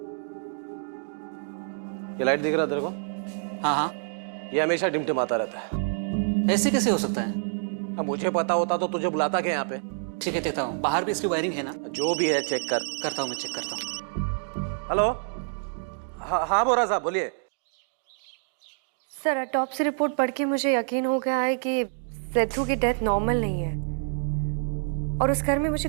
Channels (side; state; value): left; silent; digital silence